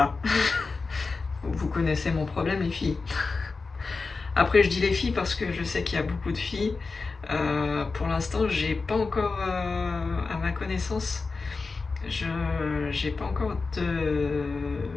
Vous connaissez mon problème, les filles. Après, je dis les filles parce que je sais qu'il y a beaucoup de filles. Pour l'instant, j'ai pas encore, à ma connaissance, j'ai pas encore de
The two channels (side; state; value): right; quieter; 4.2 dB